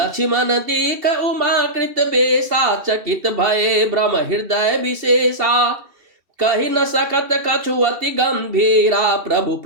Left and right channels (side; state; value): left; late; 2.7 ms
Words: दीख उमाकृत बेसा चकित भय ब्रह्म हृदय विशेषा कही न सकत कछु अति गंभीरा प्रभु